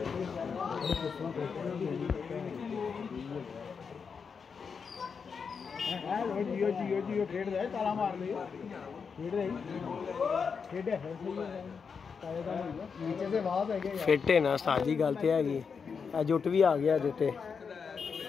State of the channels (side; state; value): right; quieter; 5.9 dB